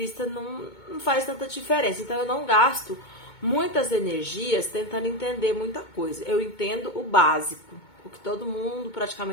não faz tanta diferença. Então, eu não gasto muitas energias tentando entender muita coisa. Eu entendo o básico, o que todo mundo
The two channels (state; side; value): late; right; 2.2 ms